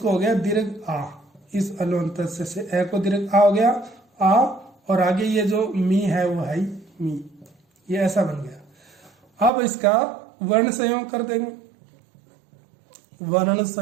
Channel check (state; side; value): drops out; left; at 9.5 s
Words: हो गया दीर्घ आ, इस अलोन तस्य से ए को दीर्घ आ हो गया आ, और आगे ये जो मी है वो है मी, ये ऐसा बन गया। अब इसका वर्ण संयोग कर देंगे। वर्ण